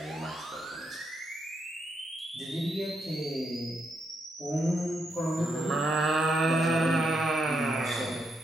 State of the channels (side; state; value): both; normal; correlation 0.80